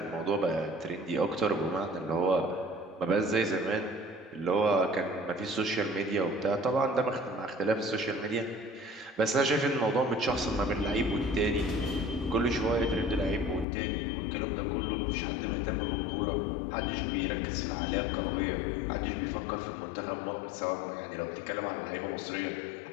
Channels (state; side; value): drops out; right; at 13.7 s